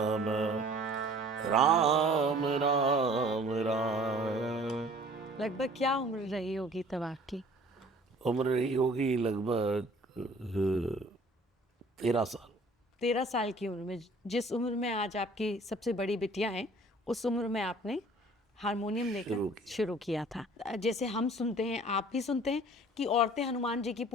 राम राम राम। लगभग क्या उम्र रही होगी तब आपकी? उम्र रही होगी लगभग 13 साल। 13 साल की उम्र में, जिस उम्र में आज आपकी सबसे बड़ी बिटिया है, उस उम्र में आपने हारमोनियम लेकर शुरू किया था। जैसे हम सुनते हैं, आप भी सुनते हैं कि औरतें हनुमान जी की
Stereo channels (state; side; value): normal; both; correlation 0.51